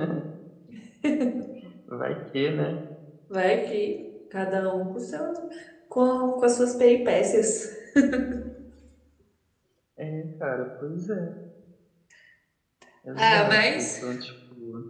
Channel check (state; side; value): identical; both; correlation 1.00